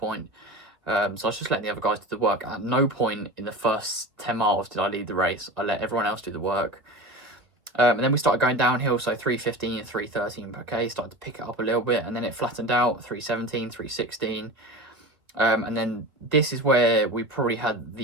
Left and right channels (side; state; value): left; late; 2.1 ms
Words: So I was just letting the other guys do the work. At no point in the first 10 miles did I lead the race. I let everyone else do the work. And then we started going downhill, so 3:15 and 3:13 per K, started to pick it up a little bit, and then it flattened out, 3:17, 3:16. And then this is where we probably had